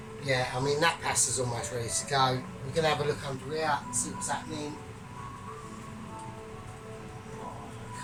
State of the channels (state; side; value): identical; both; correlation 1.00